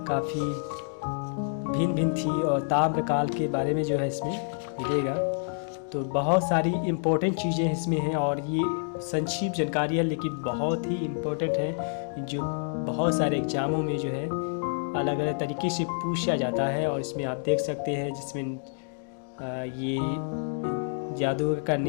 काफ़ी भिन्न थी और ताम्रकाल के बारे में जो है इसमें मिलेगा। तो बहुत सारी इम्पोर्टेंट चीज़ें इसमें हैं और ये संक्षिप्त जानकारी है लेकिन बहुत ही इम्पोर्टेंट है जो बहुत सारे एग्ज़ामों में जो है अलग अलग तरीके से पूछा जाता है। और इसमें आप देख सकते हैं जिसमें ये जादूगर का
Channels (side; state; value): right; silent; digital silence